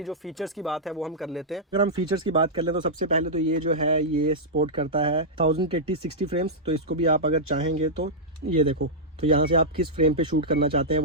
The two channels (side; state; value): both; normal; correlation -0.10